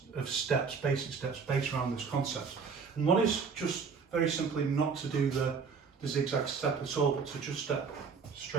of steps, basic steps based around this concept. And one is just very simply not to do the zigzag step at all, but to just step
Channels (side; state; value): left; quieter; 5.6 dB